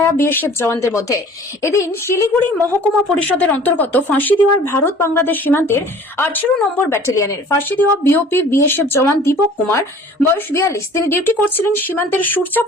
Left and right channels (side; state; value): both; normal; correlation 0.48